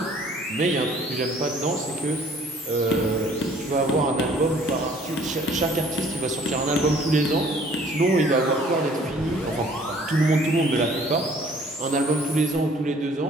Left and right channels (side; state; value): both; normal; correlation 0.56